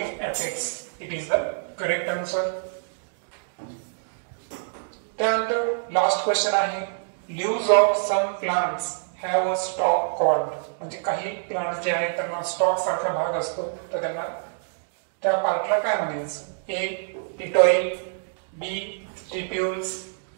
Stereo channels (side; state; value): left; silent; digital silence